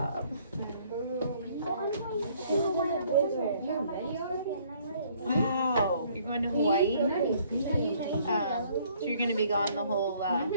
Wow, you're going to Hawaii? So you're gonna be gone the whole,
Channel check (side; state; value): both; inverted; correlation -0.62